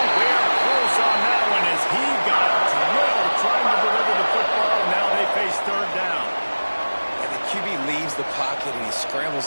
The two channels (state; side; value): inverted; both; correlation -1.00